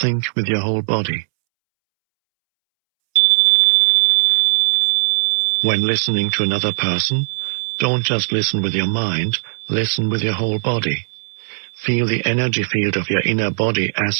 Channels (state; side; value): silent; left; 67 dB below the other